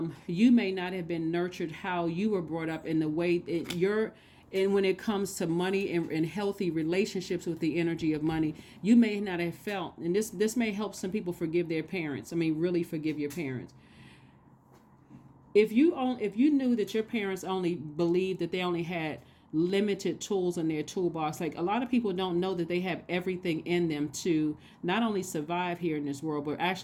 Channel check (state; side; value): identical; both; correlation 1.00